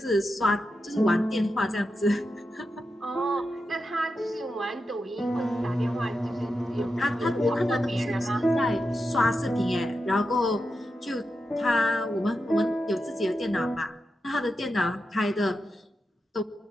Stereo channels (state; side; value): normal; both; correlation 0.89